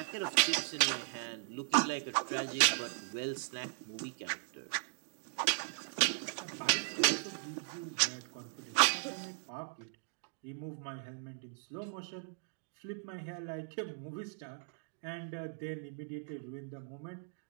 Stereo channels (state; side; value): silent; left; digital silence